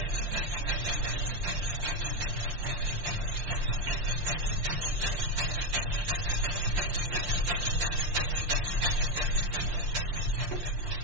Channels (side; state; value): left; late; 5.7 ms